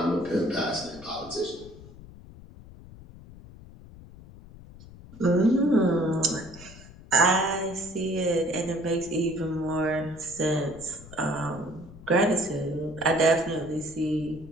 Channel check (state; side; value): noise; left; rumble, 18 dB below the sound